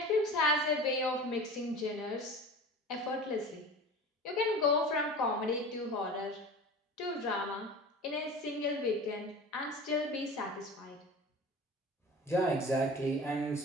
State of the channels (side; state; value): both; normal; correlation 0.36